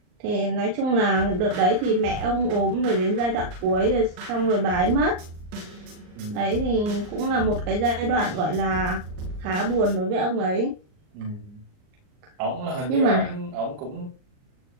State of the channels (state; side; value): late; left; 39 ms